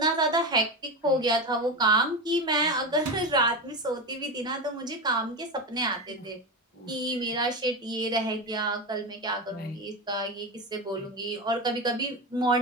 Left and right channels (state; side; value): normal; both; correlation 0.19